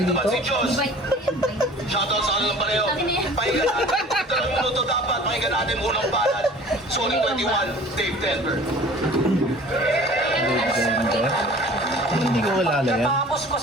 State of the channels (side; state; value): both; normal; correlation 0.45